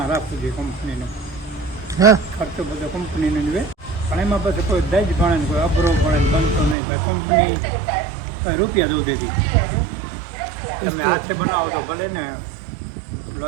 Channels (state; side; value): drops out; left; at 6.8 s